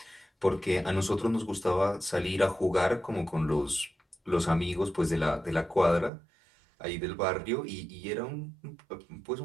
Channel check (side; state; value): left; drops out; at 6.1 s